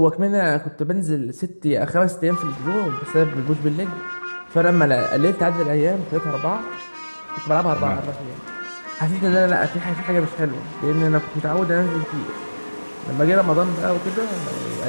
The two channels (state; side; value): inverted; both; correlation -1.00